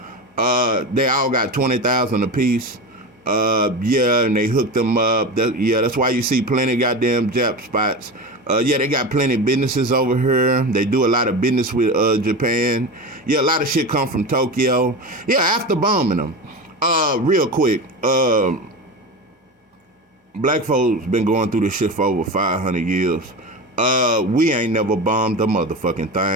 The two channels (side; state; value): both; normal; correlation 0.25